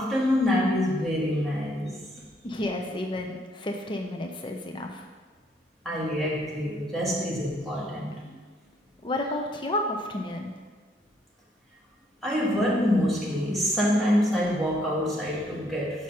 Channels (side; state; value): both; normal; correlation 0.69